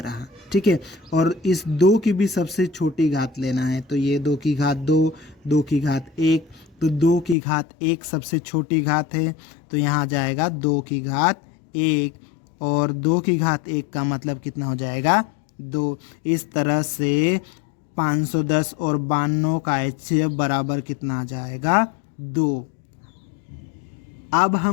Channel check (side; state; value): right; drops out; at 7.4 s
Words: रहा। ठीक है, और इस 2 की भी सबसे छोटी घात लेना है, तो ये 2 की घात 2, 2 की घात 1, तो 2 की घात 1 सबसे छोटी घात है, तो यहाँ जाएगा 2 की घात 1, और 2 की घात 1 का मतलब कितना हो जाएगा? 2। इस तरह से 510 और 92 का HCF बराबर कितना आ जाएगा? 2। अब